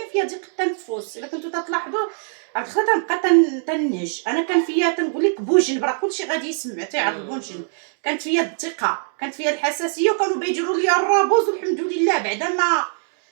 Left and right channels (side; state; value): left; silent; digital silence